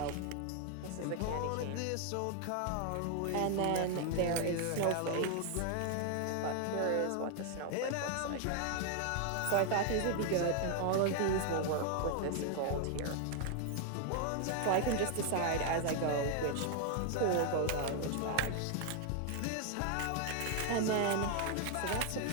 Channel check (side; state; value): both; different; correlation 0.00